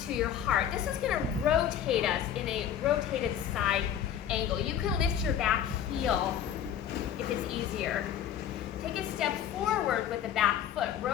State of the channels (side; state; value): right; quieter; 9.6 dB